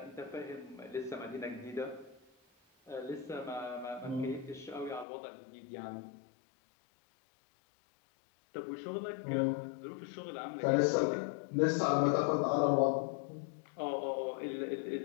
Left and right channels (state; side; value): drops out; right; at 5.1 s